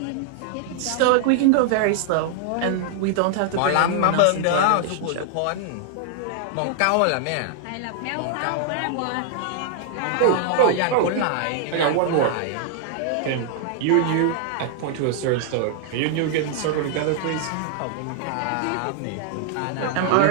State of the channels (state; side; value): different; both; correlation -0.01